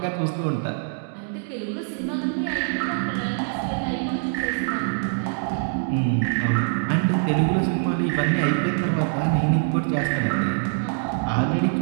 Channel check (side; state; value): left; silent; 63 dB below the other